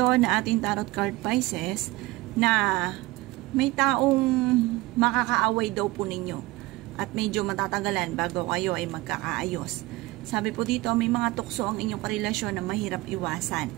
na ating tarot card Pisces na may taong makakaaway daw po ninyo at medyo matatagalan bago kayo ay magkakaayos. Sabi po dito, may mga tukso ang inyong karelasyon na mahirap iwasan.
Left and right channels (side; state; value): left; quieter; 20.3 dB